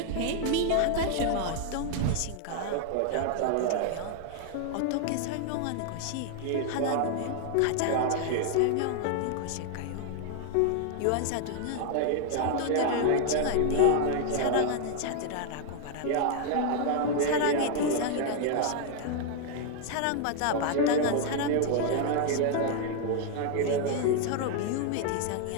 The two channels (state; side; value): different; both; correlation 0.00